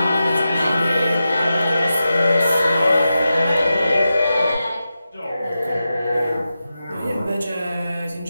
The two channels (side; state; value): both; inverted; correlation -0.91